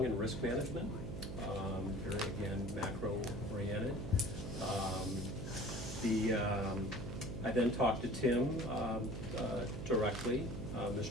in risk management, very, again, macro-oriented. I then talked to Tim directly,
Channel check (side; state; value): right; noise; hum, 6 dB below the sound